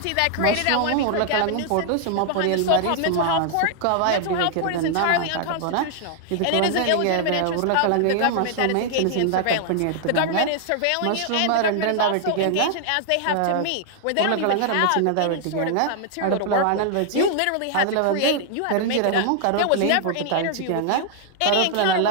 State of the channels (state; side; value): different; both; correlation 0.00